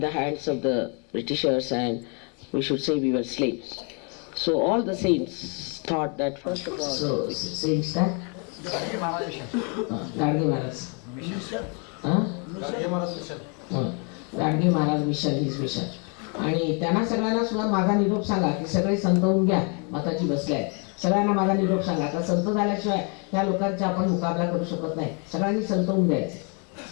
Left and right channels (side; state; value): right; quieter; 36.4 dB